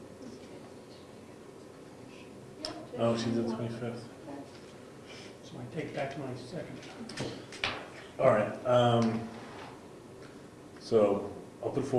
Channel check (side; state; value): both; identical; correlation 1.00